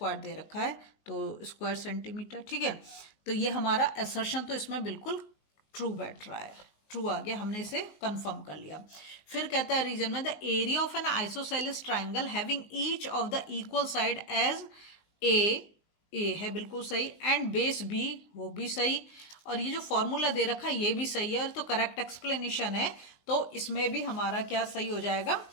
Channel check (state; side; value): late; right; 19 ms